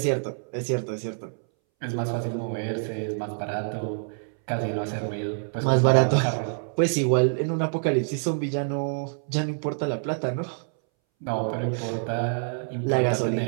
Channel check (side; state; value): left; silent; 61 dB below the other